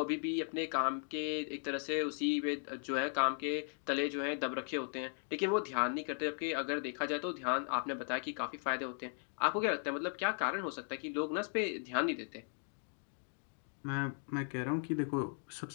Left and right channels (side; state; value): right; silent; 53 dB below the other